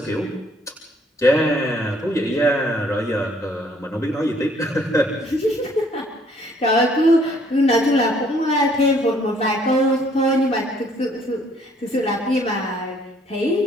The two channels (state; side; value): normal; both; correlation 0.63